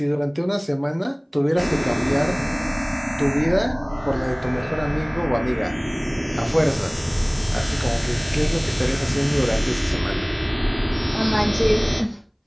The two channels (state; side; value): identical; both; correlation 1.00